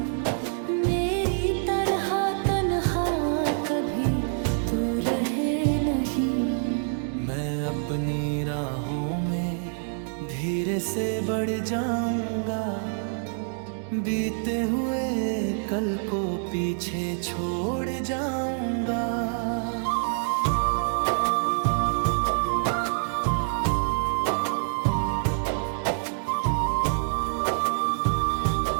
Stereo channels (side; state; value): left; silent; digital silence